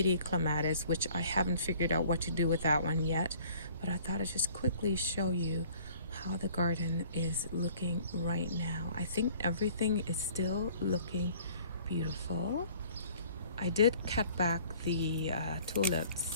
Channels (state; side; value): inverted; both; correlation -0.53